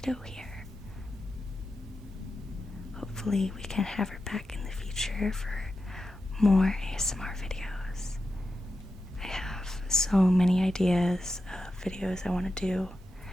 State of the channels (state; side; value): normal; both; correlation 0.90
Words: here. Hopefully we can have her back in the future for more ASMR videos. I have so many ideas of videos I want to do.